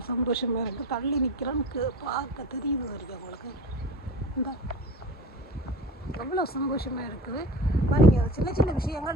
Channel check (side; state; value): both; normal; correlation 0.35